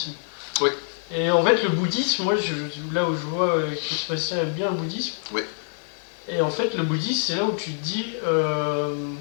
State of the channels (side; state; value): right; silent; digital silence